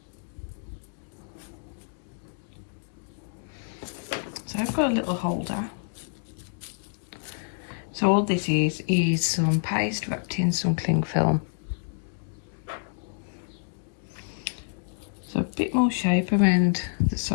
So I've got a little holder. So all this is some paste wrapped in some cling film. So a bit more shape around the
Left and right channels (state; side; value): silent; right; digital silence